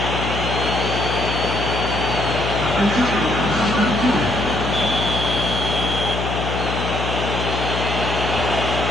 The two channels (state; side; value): noise; left; hum, 4 dB below the sound